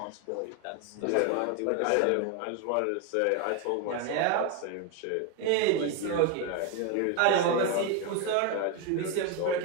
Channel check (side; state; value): both; different; correlation 0.02